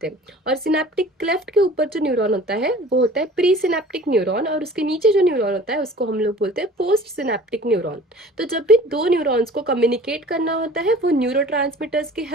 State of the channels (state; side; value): normal; both; correlation 0.46